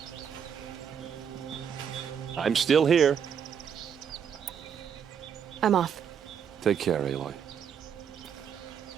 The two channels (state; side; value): quieter; left; 7.7 dB